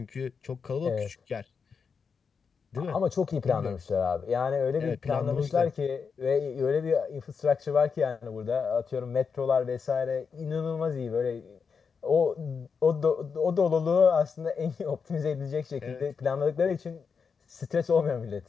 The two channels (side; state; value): right; quieter; 5.8 dB